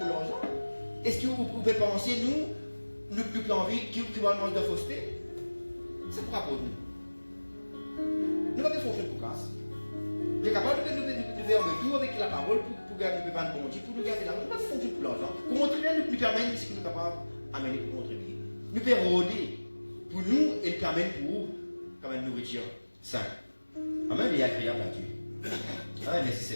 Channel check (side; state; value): both; inverted; correlation -1.00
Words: l'argent? Est-ce que vous pouvez penser, nous envie qu'il va manger de fausseté? C'est pas pour nous. Nous ne pouvons pas fonctionner pour grâce. Nous sommes capables de faire un retour avec la parole pour gagner le bon Dieu, pour nous garder l'argent. Nous ne pouvons pas fonctionner pour l'argent. Pour montrer, nous permettre ce que nous sommes capables d'amener pour contribuer. Nous pouvons rôder pour nous et nous permettre pour vous comme une nourriture saine. Amen, et agréable à Dieu. Amen, merci